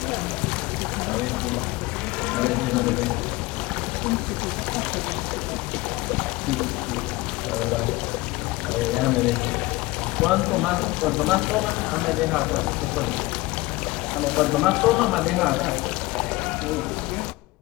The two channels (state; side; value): quieter; right; 20.7 dB